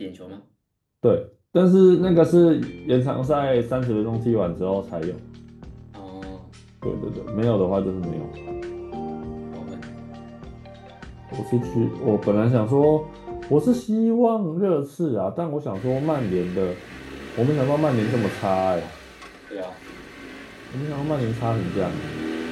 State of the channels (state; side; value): identical; both; correlation 1.00